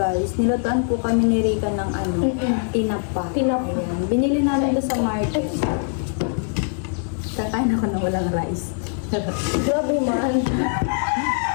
Nilutuan po kami ni Rika ng tinapa. Tinapa. Ayan, binili namin ito sa market. Kakain ako na walang rice. Grabe man.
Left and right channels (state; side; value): silent; right; 58 dB below the other